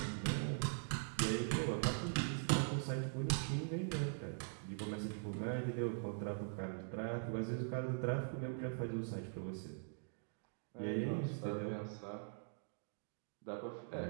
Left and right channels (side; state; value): left; silent; digital silence